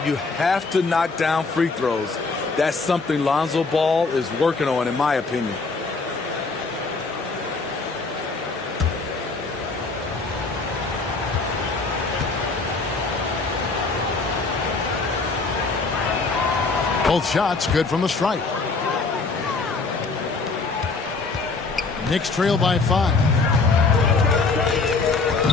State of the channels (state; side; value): quieter; right; 4.0 dB